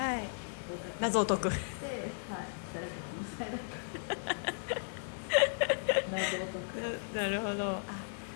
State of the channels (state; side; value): silent; right; digital silence